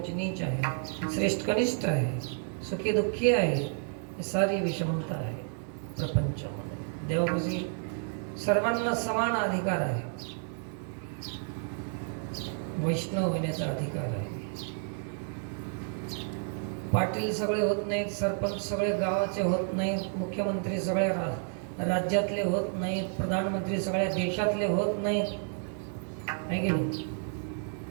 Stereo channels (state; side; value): silent; left; 57 dB below the other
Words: नीच आहे, श्रेष्ठ कनिष्ठ आहे, सुखी दुःखी आहे. ही सारी विषमता आहे प्रपंचामध्ये. देवापाशी सर्वांना समान अधिकार आहे. वैष्णव होण्याचा अधिकार आहे. पाटील सगळे होत नाहीत, सरपंच सगळे गावाचे होत नाहीत, मुख्यमंत्री सगळ्या राज्यातले होत नाहीत, प्रधानमंत्री सगळ्या देशातले होत नाहीत. आहे की नाही?